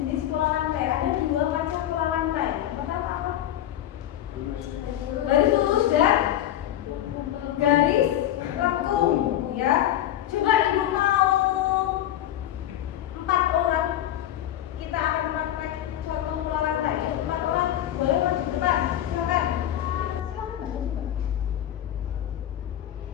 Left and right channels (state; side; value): quieter; right; 12.3 dB